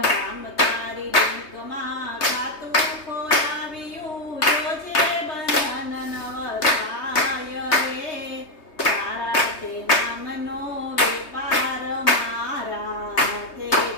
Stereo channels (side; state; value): right; late; 3.2 ms